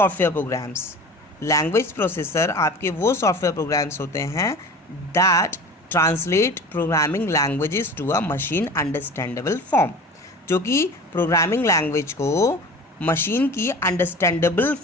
programs. Language processor आपके वो सॉफ्टवेयर प्रोग्राम्स होते हैं that translate programming languages to a machine understandable form, जो कि प्रोग्रामिंग लैंग्वेज को मशीन की अंडरस्टैंडेबल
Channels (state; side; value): normal; both; correlation 0.37